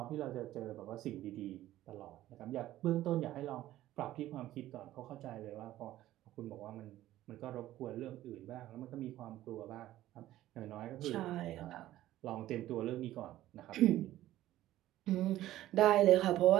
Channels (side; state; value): left; quieter; 14.4 dB